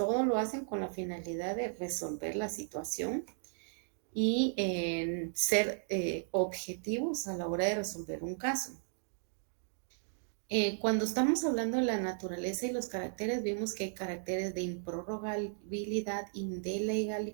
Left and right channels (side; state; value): left; silent; digital silence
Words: lo hacen con la finalidad de resolver la situación y ser objetivos a la hora de resolver un caso. Cuando estamos hablando de la naturaleza y los caracteres, vimos que hay caracteres de improrrogabilidad,